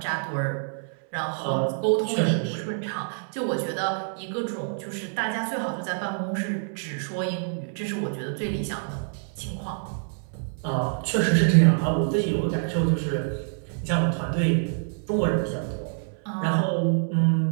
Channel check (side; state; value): left; silent; 59 dB below the other